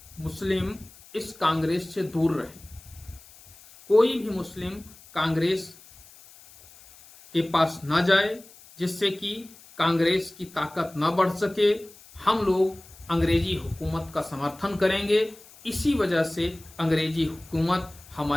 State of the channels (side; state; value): left; noise; hiss, 23 dB below the sound